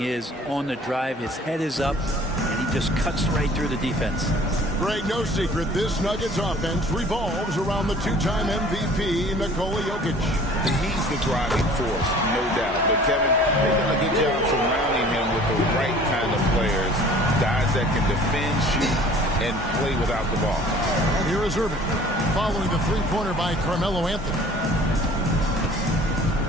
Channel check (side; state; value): both; normal; correlation 0.49